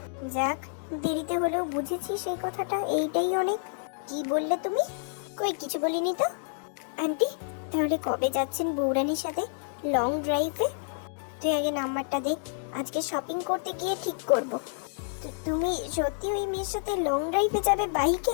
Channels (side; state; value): right; silent; digital silence